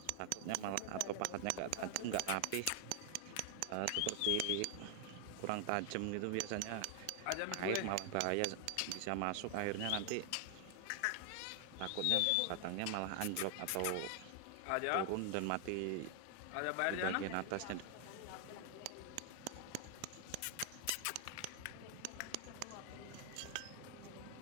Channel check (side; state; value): both; different; correlation 0.00